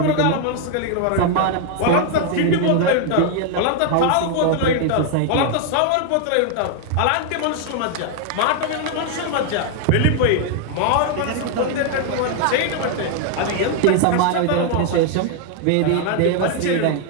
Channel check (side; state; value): both; different; correlation 0.00